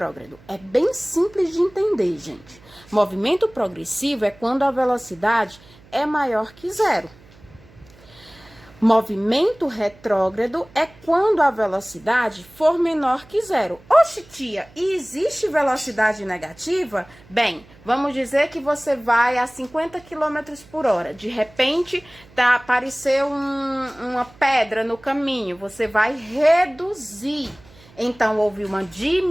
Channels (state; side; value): noise; right; hum, 25 dB below the sound